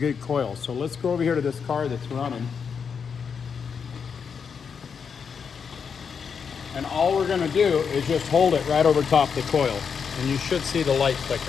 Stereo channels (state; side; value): quieter; right; 6.4 dB